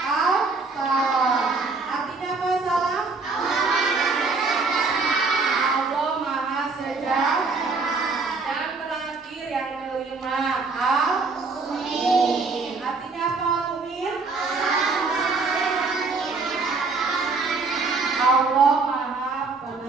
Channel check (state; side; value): quieter; left; 4.1 dB